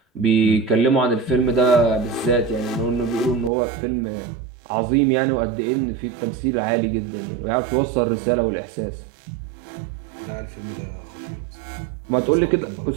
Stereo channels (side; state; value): left; drops out; at 3.5 s